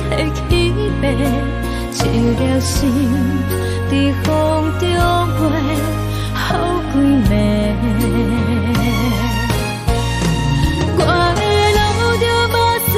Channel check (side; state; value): both; identical; correlation 1.00